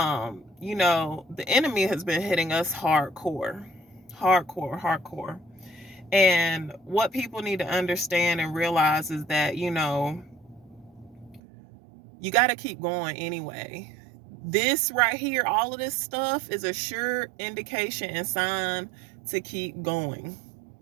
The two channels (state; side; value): drops out; left; at 11.4 s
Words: enemy has been hitting us hardcore, hardcore, hardcore. And what people need to understand and realize is that, you got to keep going anyway. This right here, all of this stuff is a sure indication and sign to keep going.